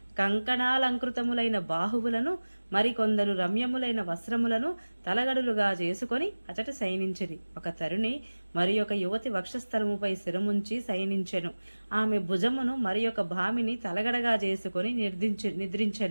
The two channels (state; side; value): inverted; both; correlation -1.00